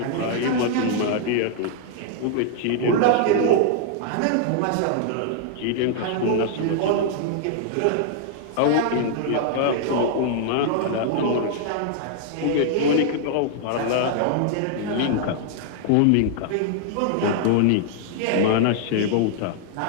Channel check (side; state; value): both; different; correlation -0.01